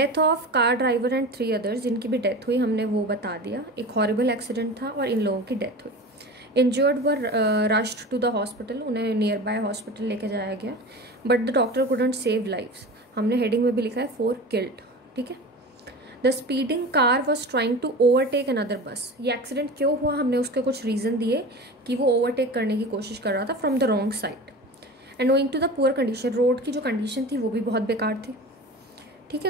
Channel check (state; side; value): normal; both; correlation 0.33